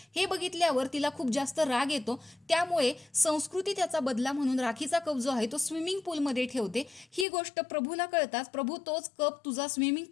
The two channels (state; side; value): drops out; right; at 7.2 s